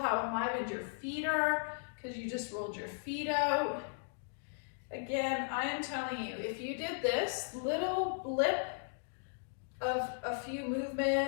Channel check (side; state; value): right; silent; digital silence